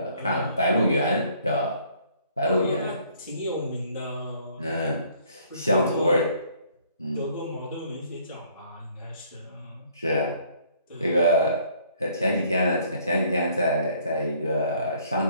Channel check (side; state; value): both; inverted; correlation -0.61